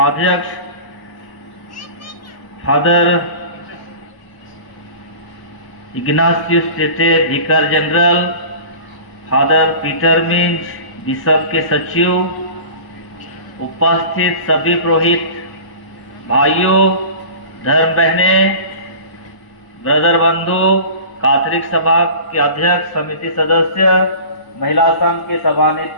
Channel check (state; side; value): late; right; 1.0 ms